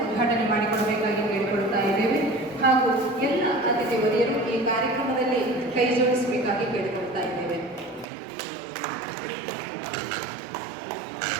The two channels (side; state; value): left; drops out; at 8.1 s